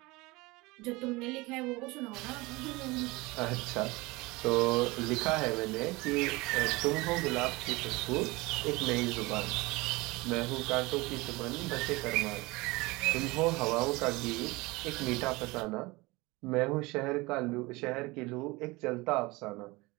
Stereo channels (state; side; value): quieter; left; 23.0 dB